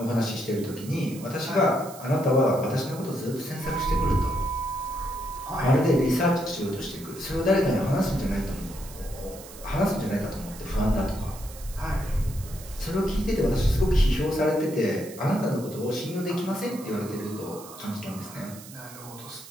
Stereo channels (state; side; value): noise; right; hiss, 17 dB below the sound